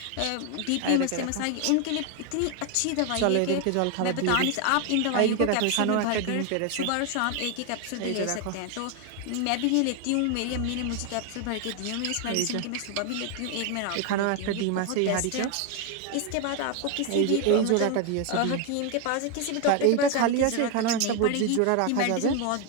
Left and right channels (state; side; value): different; both; correlation 0.01